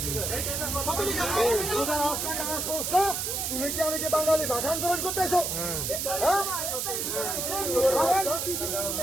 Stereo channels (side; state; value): right; noise; hiss, 1 dB below the sound